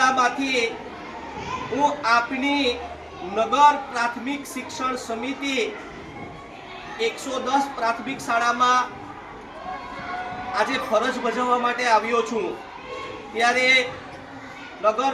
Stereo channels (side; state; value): both; identical; correlation 1.00